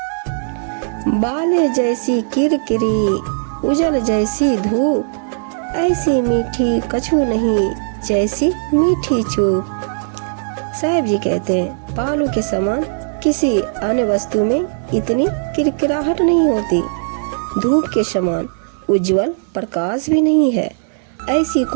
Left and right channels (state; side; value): silent; left; digital silence